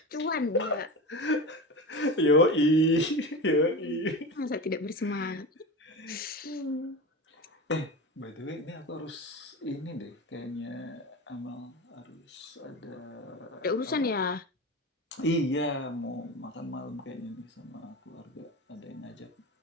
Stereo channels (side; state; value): both; normal; correlation 0.27